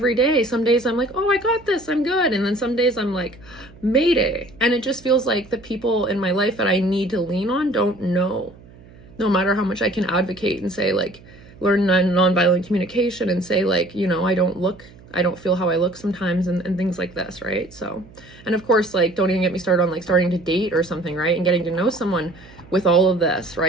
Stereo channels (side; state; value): right; noise; hum, 23 dB below the sound